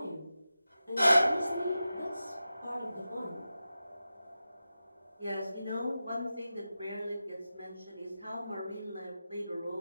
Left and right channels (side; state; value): both; inverted; correlation -0.93